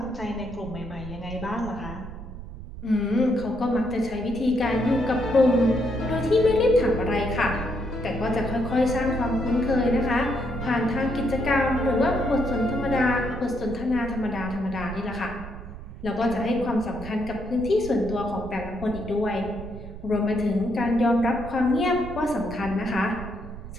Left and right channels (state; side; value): noise; right; rumble, 12 dB below the sound